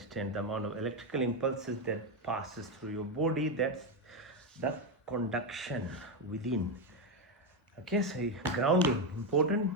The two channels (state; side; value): normal; both; correlation 0.08